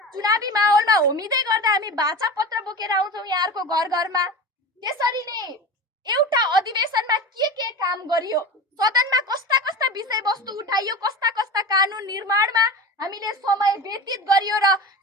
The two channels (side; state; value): both; normal; correlation 0.29